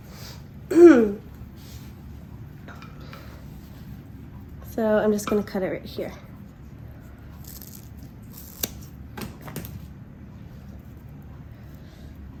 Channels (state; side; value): identical; both; correlation 1.00